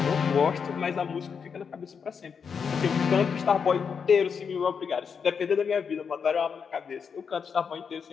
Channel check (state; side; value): quieter; right; 6.3 dB